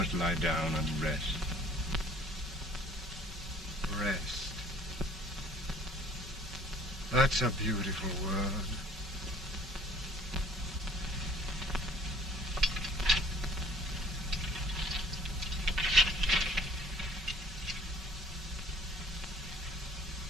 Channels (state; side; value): normal; both; correlation 0.54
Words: lie down and rest. Rest. That's a beautiful word.